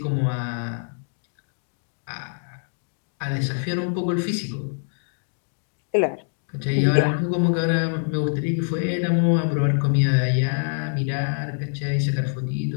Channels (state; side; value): silent; right; digital silence